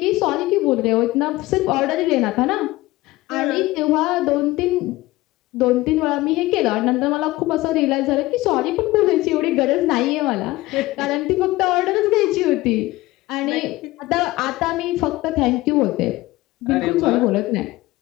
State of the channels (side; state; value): right; quieter; 18.9 dB